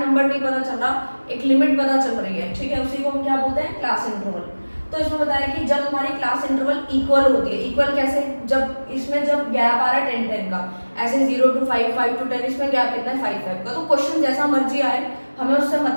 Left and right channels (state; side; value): inverted; both; correlation -1.00